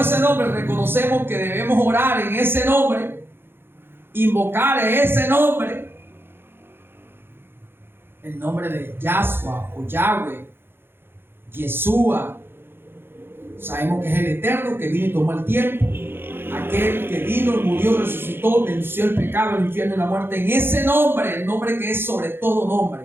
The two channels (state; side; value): late; left; 0.11 ms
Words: ese nombre, reconocemos que debemos orar en ese nombre, invocar ese nombre, el nombre de Yahshua o Yahweh, Yeshua. Sabemos que es el Eterno que vino y tomó el tiempo, aquel que vino, murió, resucitó, venció el pecado, el infierno y la muerte, en ese nombre, el nombre que es sobre todo